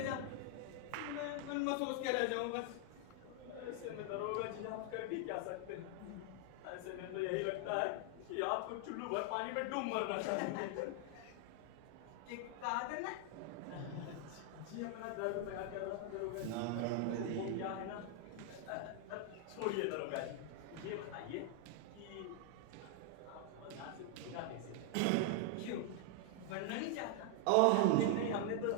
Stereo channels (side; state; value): both; different; correlation 0.00